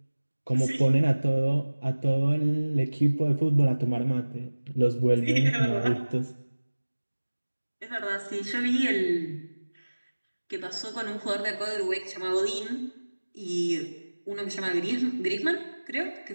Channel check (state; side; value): inverted; both; correlation -1.00